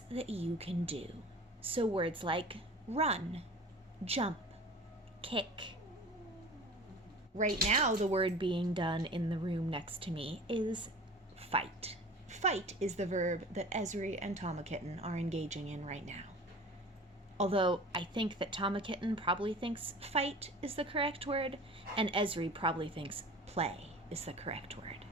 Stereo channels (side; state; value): both; normal; correlation 0.40